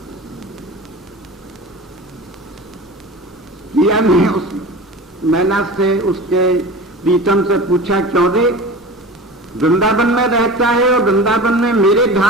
किया ने उस मैना से, उसके प्रीतम से पूछा, क्यों रे वृंदावन में रहता है और वृंदावन में मेरे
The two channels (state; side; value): normal; both; correlation 0.34